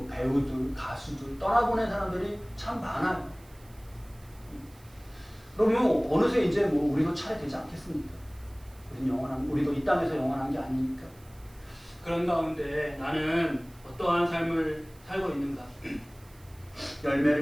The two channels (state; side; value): noise; right; hiss, 27 dB below the sound